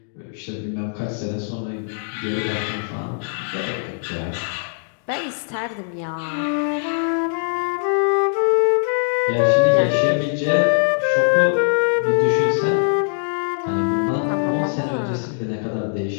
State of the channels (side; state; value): right; silent; digital silence